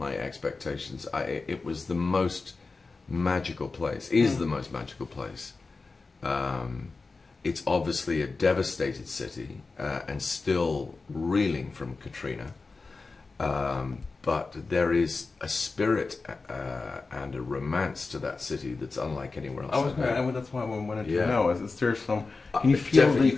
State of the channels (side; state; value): right; quieter; 4.0 dB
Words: expectations. It was the most magical place, is the most magical place. It's obviously a devastated city and still reeling from Katrina. But there is a spirit and a romance to that city that's unlike anywhere else. That's why I wanted to know. Is there some? Can you feel definitely,